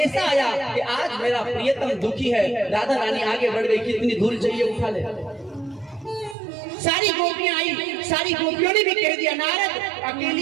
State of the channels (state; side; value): drops out; left; at 6.4 s